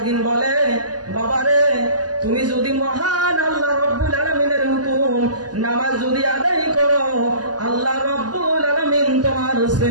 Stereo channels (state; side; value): late; left; 0.68 ms